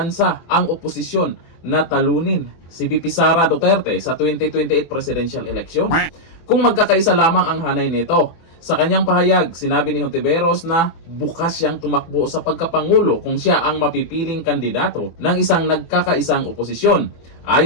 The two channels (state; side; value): late; right; 24 ms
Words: ang oposisyon na talunin si VP Sara Duterte sa 2028 presidential election kung magkakaisa lamang ang hanay nito. Sa kanyang pahayag, sinabi ni Hontiveros na bukas siyang tumakbo sa pagkapangulo kung siya ang mapipiling kandidato ng isang nagkakaisang oposisyon.